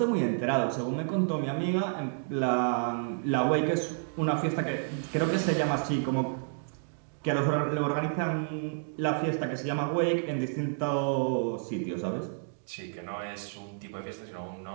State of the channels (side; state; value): left; silent; digital silence